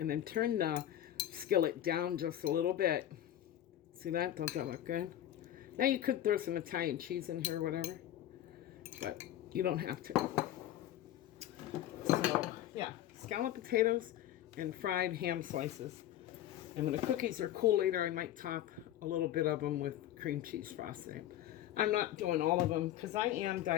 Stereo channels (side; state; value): right; quieter; 12.4 dB